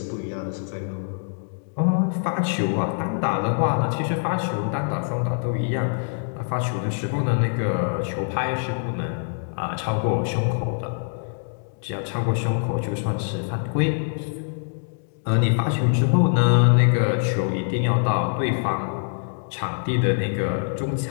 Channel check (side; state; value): right; silent; digital silence